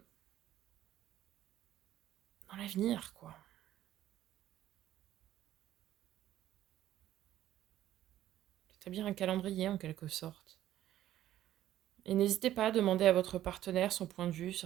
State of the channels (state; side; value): quieter; left; 12.9 dB